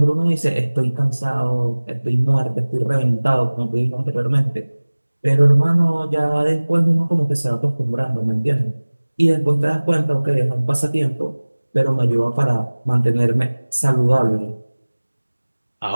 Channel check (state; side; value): inverted; both; correlation -1.00